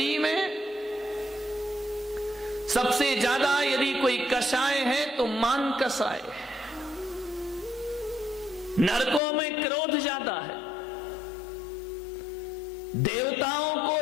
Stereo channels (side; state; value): right; drops out; at 9.2 s